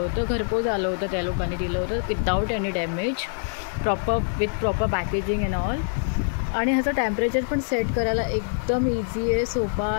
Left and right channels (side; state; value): right; silent; digital silence